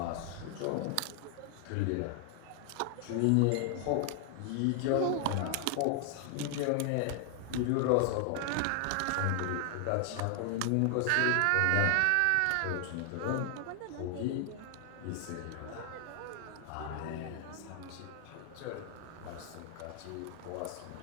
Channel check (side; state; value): both; different; correlation 0.00